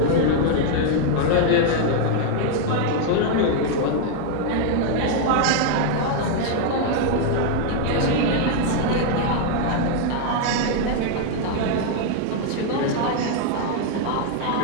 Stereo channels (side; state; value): both; different; correlation 0.00